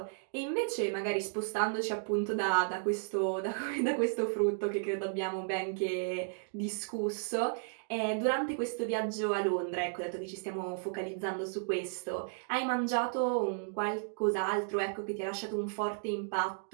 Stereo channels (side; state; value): left; silent; digital silence